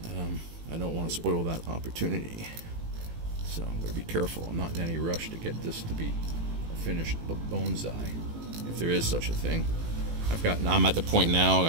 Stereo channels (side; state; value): left; late; 18 ms